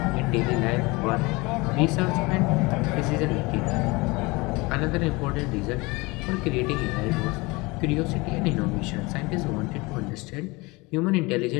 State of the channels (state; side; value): quieter; right; 24.4 dB